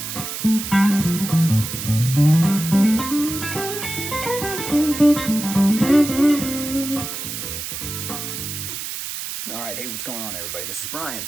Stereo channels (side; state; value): right; noise; hiss, 6 dB below the sound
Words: right, hey, what's going on, everybody? This is Brian,